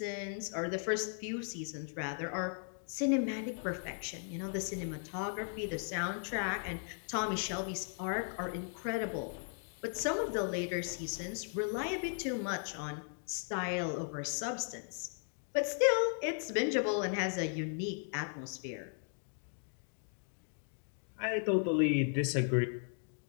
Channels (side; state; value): right; silent; 53 dB below the other